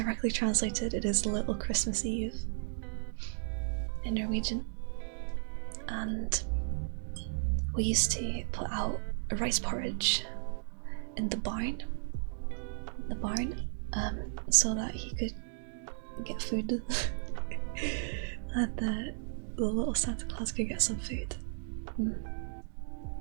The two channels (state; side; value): silent; left; digital silence